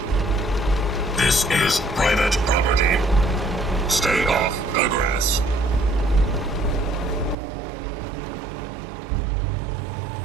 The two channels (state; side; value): drops out; left; at 7.4 s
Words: This is private property. Stay off the grass.